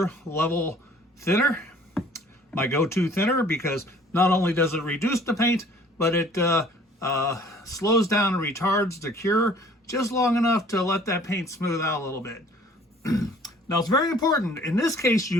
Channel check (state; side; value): normal; both; correlation 0.54